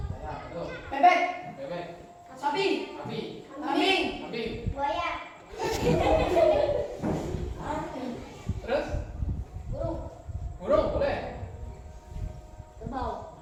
Ya, betul. Bebek. Bebek, Sapi. sapi, Kambing. kambing. buaya, Terus? burung, Burung boleh. kerbau,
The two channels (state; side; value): identical; both; correlation 1.00